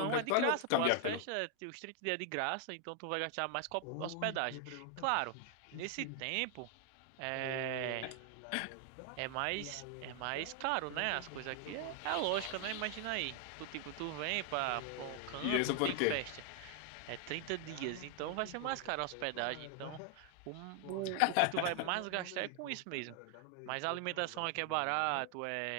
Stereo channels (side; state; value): both; different; correlation 0.00